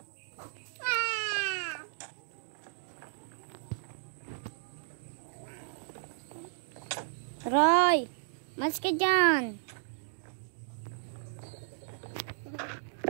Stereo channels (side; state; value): left; silent; digital silence